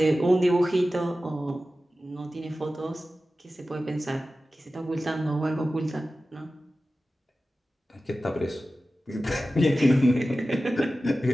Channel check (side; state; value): both; normal; correlation 0.95